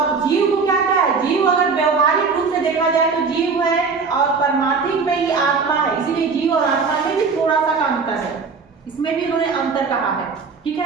जीव को क्या क्या है, जीव अगर व्यवहारिक रूप से देखा जाए तो जीव है और परमार्थिक में ही आत्मा है, इसीलिए जीव और आत्मा में भी थोड़ा सा का अंतर है, इसमें भी इन्होंने अंतर कहा है। ठीक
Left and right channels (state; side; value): quieter; left; 5.0 dB